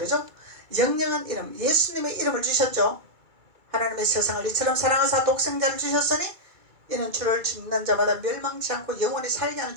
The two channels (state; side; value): late; left; 2.3 ms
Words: 영영한 이름, 예수님의 이름을 주셨죠. 하나님의 세상을 이처럼 사랑하사 독생자를 주셨으니 이는 주를 믿는 자마다 멸망치 않고 영원히 살게 하는